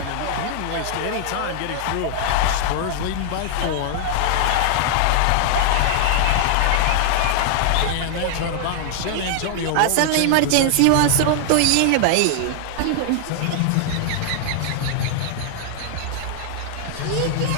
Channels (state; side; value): different; both; correlation 0.00